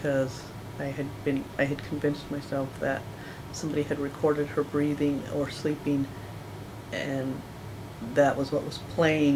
I had convinced myself that somebody had recorded her breathing or sleeping, and that was what was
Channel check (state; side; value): identical; both; correlation 1.00